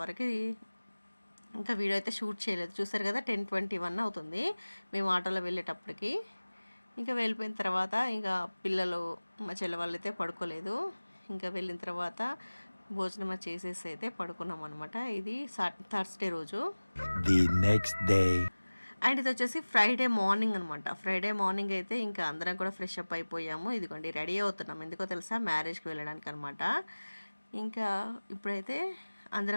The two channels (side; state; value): both; inverted; correlation -1.00